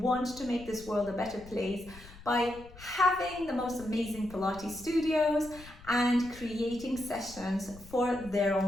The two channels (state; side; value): noise; left; rumble, 19 dB below the sound